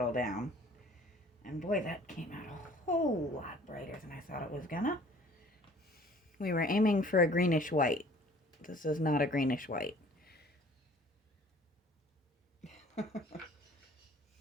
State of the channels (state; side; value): normal; both; correlation 0.52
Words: down. And boy, that came out a whole lot brighter than I thought it was gonna. We were aiming for a greenish white. This is not a greenish white.